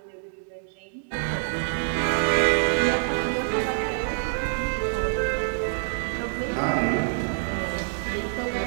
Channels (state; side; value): silent; left; digital silence